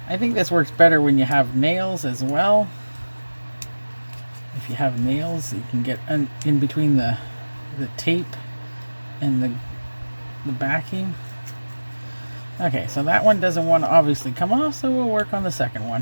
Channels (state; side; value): inverted; both; correlation -1.00